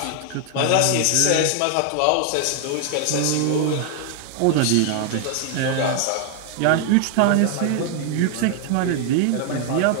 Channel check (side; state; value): both; different; correlation 0.00